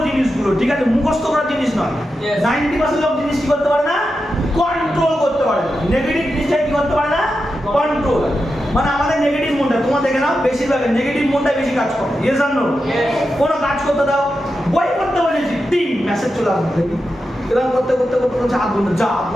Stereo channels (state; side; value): normal; both; correlation 0.89